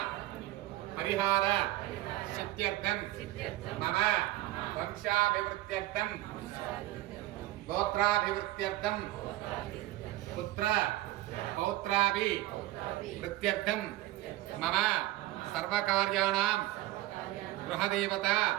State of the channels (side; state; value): left; quieter; 16.7 dB